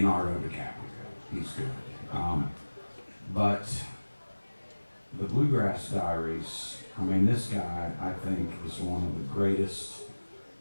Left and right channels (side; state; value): both; inverted; correlation -1.00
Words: DiCaprio, he's good. But the Bluegrass Diaries, I mean, this guy, I think, is one of the greatest